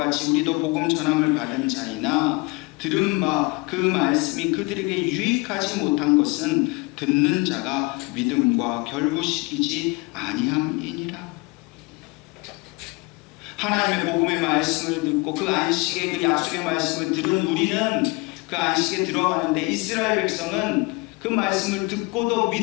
우리도 복음 전함을 받은 자이나 들은 바 그 말씀이 그들에게 유익하지 못한 것은 듣는 자가 믿음과 결부시키지 아니함이니라. 하나님의 복음의 말씀을 듣고 그 안식의 그 약속의 말씀을 들은 우리는 그 안식에 들어가는데 이스라엘 백성은 그 말씀을 듣고도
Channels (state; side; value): quieter; right; 26.3 dB